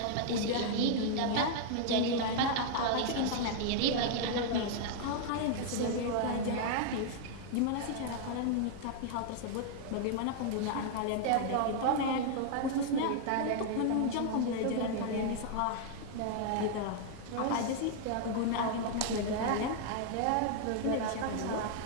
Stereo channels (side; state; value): both; different; correlation 0.00